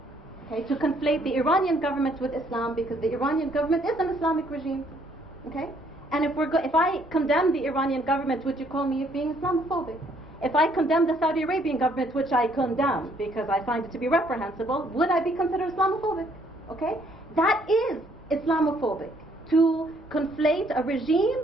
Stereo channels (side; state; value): both; normal; correlation 0.66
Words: Okay, to conflate the Iranian government with Islam, because the Iranian government is an Islamic regime. Okay? And if I condemn the Iranian government, would you call me being Islamophobic? If I condemn the Saudi Arabian government, which I condemn because I find it to be reprehensible, would I be considered Islamophobic? Okay? That is Islamophobic, to conflate a regime